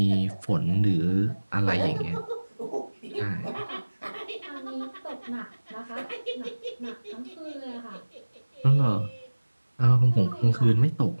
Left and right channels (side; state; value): both; inverted; correlation -1.00